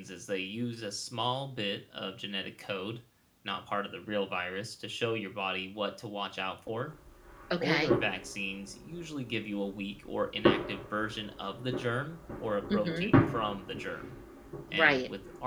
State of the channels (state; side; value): identical; both; correlation 1.00